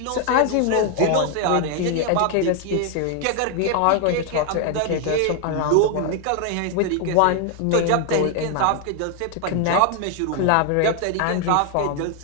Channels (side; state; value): both; different; correlation 0.00